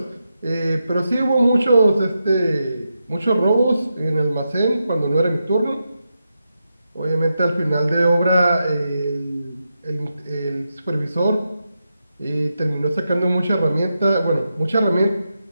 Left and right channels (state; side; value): inverted; both; correlation -0.87